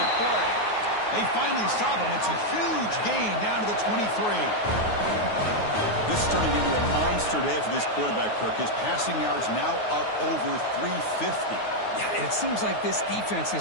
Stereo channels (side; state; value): right; late; 9.5 ms